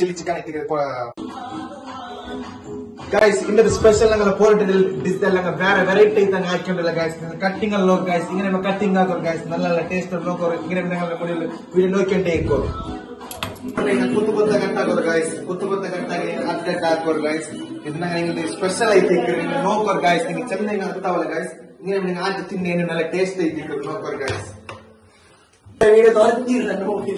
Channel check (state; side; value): identical; both; correlation 1.00